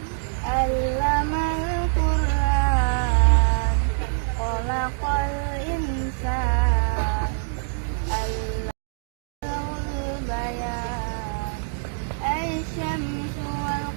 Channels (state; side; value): silent; left; digital silence